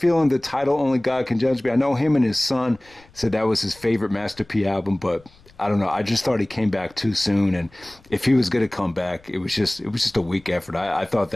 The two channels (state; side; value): noise; left; rumble, 27 dB below the sound